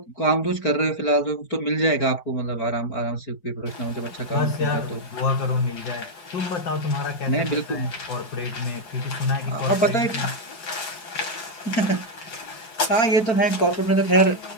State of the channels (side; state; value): right; late; 4.8 ms